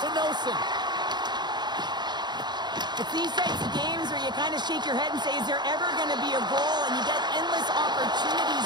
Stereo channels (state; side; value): late; left; 0.21 ms